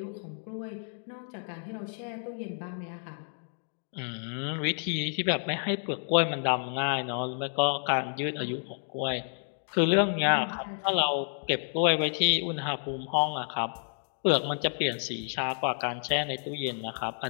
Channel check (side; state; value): right; silent; 58 dB below the other